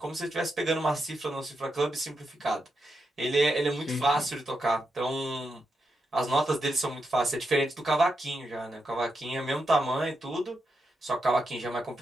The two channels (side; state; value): both; normal; correlation 0.85